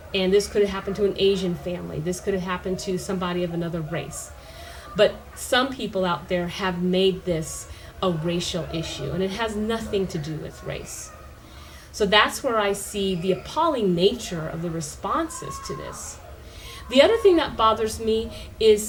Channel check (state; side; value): identical; both; correlation 1.00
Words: and this could have happened to an Asian family. This could have happened to somebody of another race. But some people out there have made this a racial issue, and it has nothing to do with race. So that's where I see the appalling nature of the responses to this. The other thing that bothers me